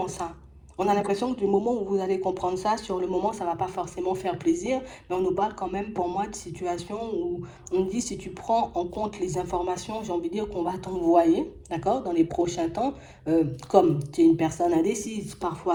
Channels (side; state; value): both; identical; correlation 1.00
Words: ça. On a l'impression que du moment où vous allez comprendre ça, sur le moment, ça ne va pas forcément faire plaisir, mais on nous parle quand même, pour moi, de situations où on dit si tu prends en compte les informations, j'ai envie de dire qu'on va t'envoyer, d'accord, dans les prochains temps, comme tu es une personne indécise